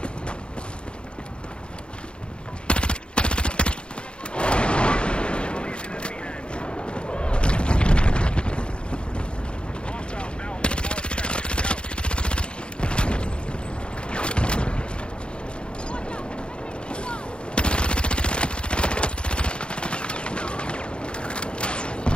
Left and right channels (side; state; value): right; late; 0.055 ms